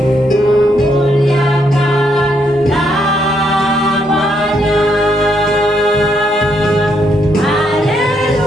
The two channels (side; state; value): both; normal; correlation 0.75